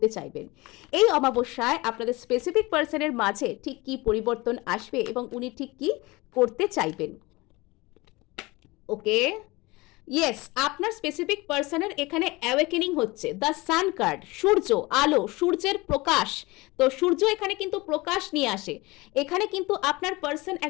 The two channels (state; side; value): quieter; right; 22.5 dB